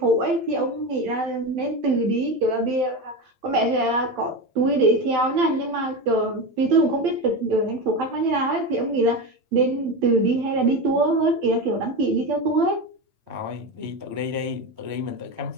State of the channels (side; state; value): left; late; 8.8 ms